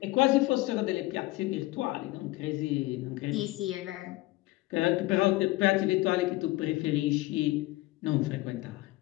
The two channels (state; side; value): quieter; right; 19.5 dB